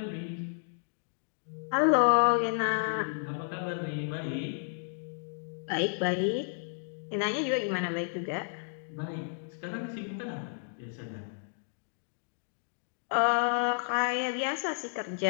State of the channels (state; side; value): silent; right; digital silence